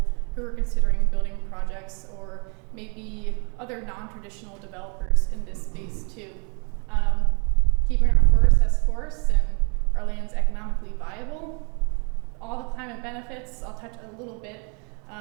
who are considering building projects, or maybe other non-traditional developers in this space too. Keeping our forests as forests and our lands economically viable. All the climate benefits, I'll touch a little bit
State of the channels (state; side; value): quieter; left; 35.4 dB